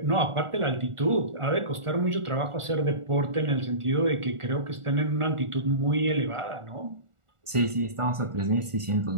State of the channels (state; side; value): late; left; 1.4 ms